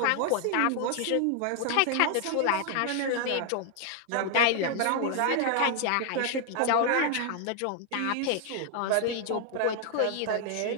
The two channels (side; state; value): both; different; correlation 0.00